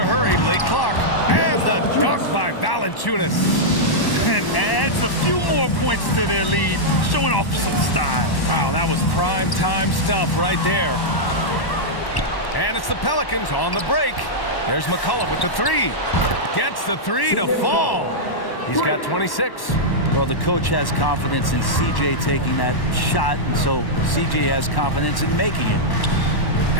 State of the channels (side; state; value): right; late; 1.1 ms